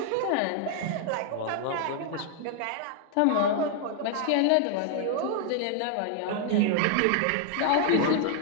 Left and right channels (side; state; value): both; different; correlation 0.00